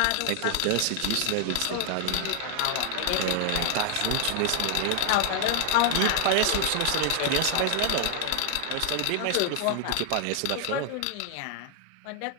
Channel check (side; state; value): both; different; correlation 0.00